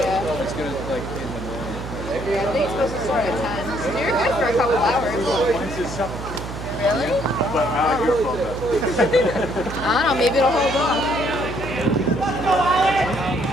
It's gonna like in the morning. I think it's supposed to start at 10. So you're good for a couple hours. Really? But I like your phone though. I don't know, maybe it'll hold on. Is it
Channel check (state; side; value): noise; right; hum, 9 dB below the sound